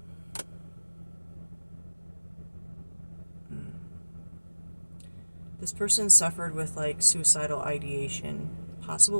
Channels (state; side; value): inverted; both; correlation -1.00